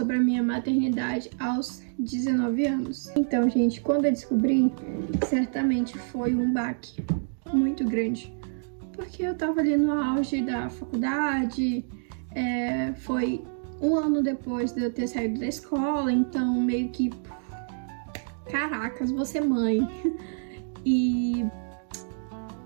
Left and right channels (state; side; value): silent; left; digital silence